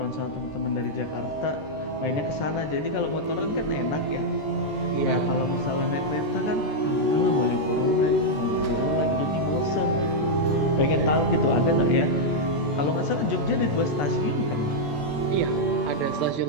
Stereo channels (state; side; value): late; right; 14 ms